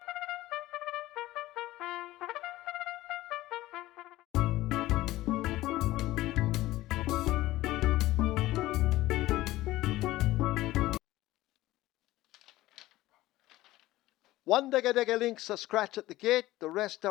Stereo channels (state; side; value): quieter; right; 16.8 dB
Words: One dega links a scratch at the gate, the rest